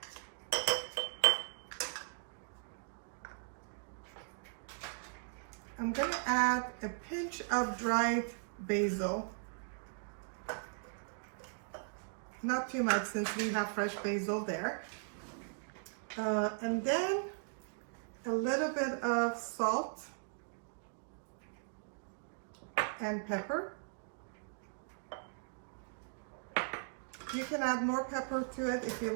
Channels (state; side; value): silent; left; digital silence